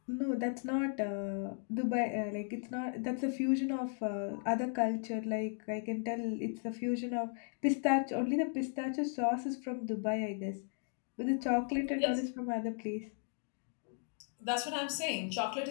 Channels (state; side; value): silent; right; 54 dB below the other